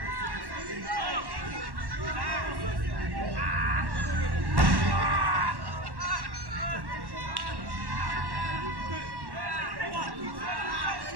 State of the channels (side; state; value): left; late; 1.1 ms